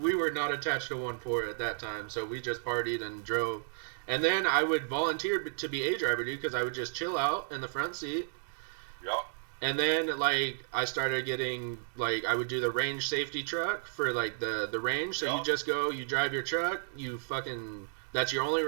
not attached to 1-4 at that time, so we just partied and drove. And then I would volunteer to be a driver, dude, because I would just chill out in the front seat. Yep. And then, like, I started getting, like, I would do the range safety truck for, like, the range. So you just go, you drive your truck, that's your only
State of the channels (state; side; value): silent; left; digital silence